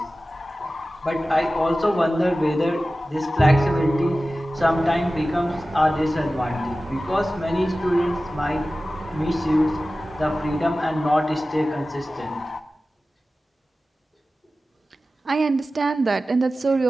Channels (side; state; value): both; normal; correlation 0.95